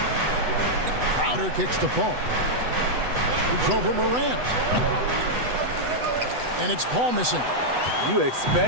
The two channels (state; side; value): late; left; 8.1 ms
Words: Crowder kicks to Paul. It's over Morant. And it's Paul missing. You